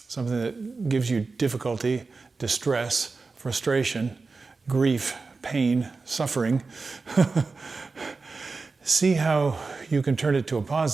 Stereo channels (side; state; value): left; quieter; 4.1 dB